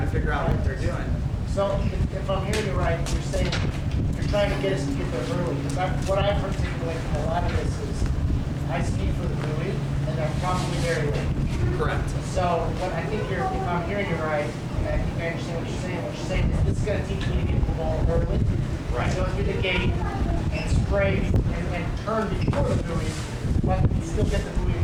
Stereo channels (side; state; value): both; identical; correlation 1.00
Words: to figure out what they're doing. So if I'm hearing you right, you're saying you're trying to get us to get there early. Because what I've articulated from a lot of this is I ski for the buoy, and I'm probably very late. Correct. So what I think if I'm hearing you right, and I think I understand what you're saying is this is going to teach me to get the ball early. Right. So through the gate and spray and turn before the buoy, but still get the buoy